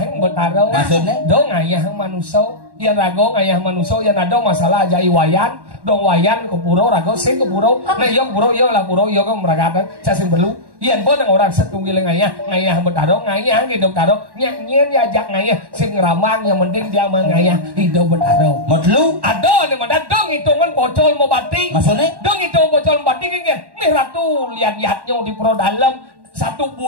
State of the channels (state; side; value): late; left; 1.1 ms